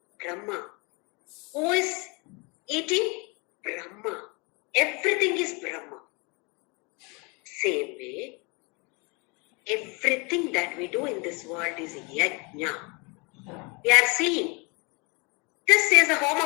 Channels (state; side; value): quieter; right; 30.3 dB